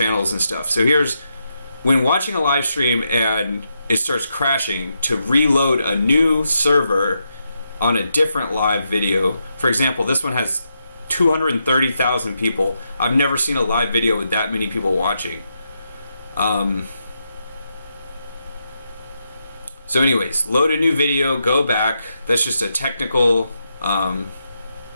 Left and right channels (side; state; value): both; inverted; correlation -0.83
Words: and stuff. So here's, when watching a live stream and it starts crashing, to reload a new server on a different live video. For example, this one has 230,000 people. I've never seen a live video with that many people watching. So anyways, load a new video, go back. That's just a technical,